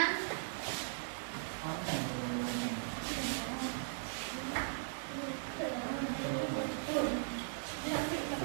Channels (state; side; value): silent; left; digital silence